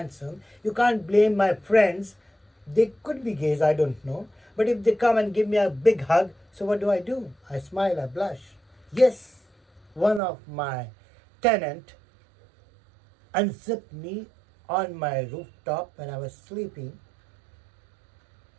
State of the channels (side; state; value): left; drops out; at 10.2 s